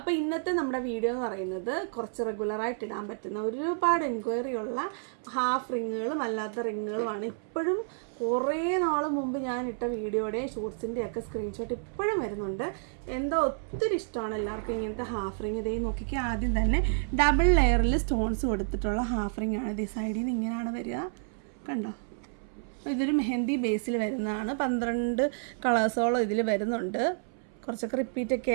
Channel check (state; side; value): silent; left; 58 dB below the other